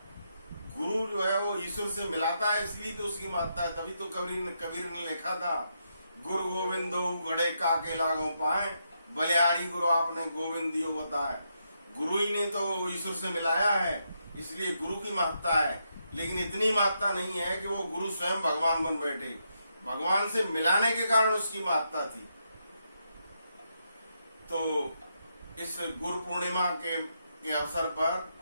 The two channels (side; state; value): both; inverted; correlation -0.81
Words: गुरु जो है वो ईश्वर से मिलाता है, इसलिए तो उसकी महत्ता है। तभी तो कबीर ने लिखा था, गुरु गोविंदो गड़े काके लागो पाए, बलिहारी गुरु आपने गोविंद दियो बताए। गुरु ही ने तो ईश्वर से मिलाया है, इसलिए गुरु की महत्ता है। लेकिन इतनी महत्ता नहीं है कि वो गुरु स्वयं भगवान बन बैठे। भगवान से मिलाने के कारण उसकी महत्ता थी। तो इस गुरु पूर्णिमा के अवसर पर